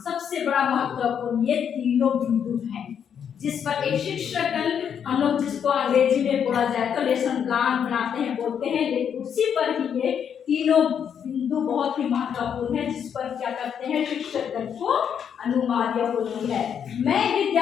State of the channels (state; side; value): quieter; right; 8.0 dB